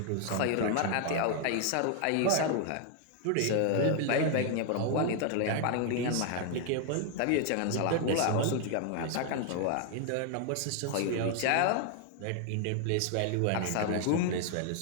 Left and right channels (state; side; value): different; both; correlation 0.00